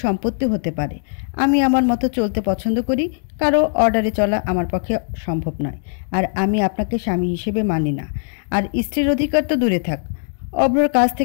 সম্পত্তি হতে পারে। আমি আমার মতো চলতে পছন্দ করি। কারো অর্ডারে চলা আমার পক্ষে সম্ভব নয়। আর আমি আপনাকে স্বামী হিসেবে মানি না। আর স্ত্রীর অধিকার তো দূরে থাক। অভ্রর কাছ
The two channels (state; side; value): silent; right; digital silence